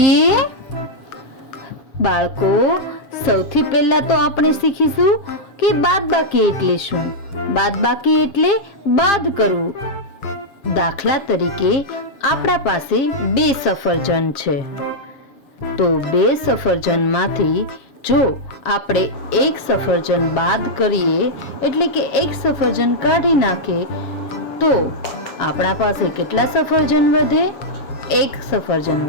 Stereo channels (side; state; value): right; late; 7.4 ms